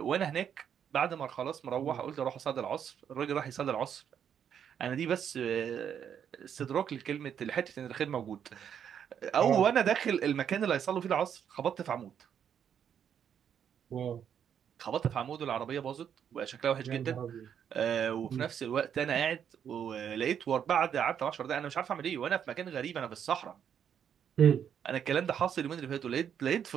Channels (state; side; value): quieter; left; 8.5 dB